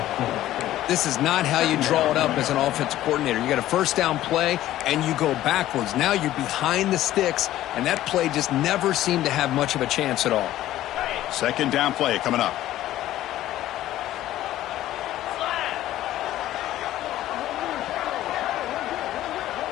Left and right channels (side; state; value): right; quieter; 14.0 dB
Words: This is not how you draw it up as an offensive coordinator. You got a first down play, and you go backwards. Now you're behind the sticks, and that play just never seemed to have much of a chance at all. Second down play coming up.